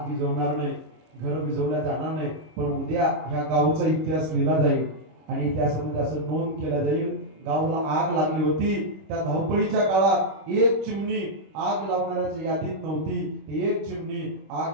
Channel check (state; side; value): late; left; 26 ms